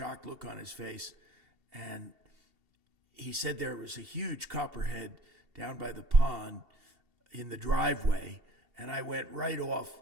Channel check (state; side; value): late; left; 2.7 ms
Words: look on his face. And he said there was a huge copperhead down by the pond in the driveway. And I went right off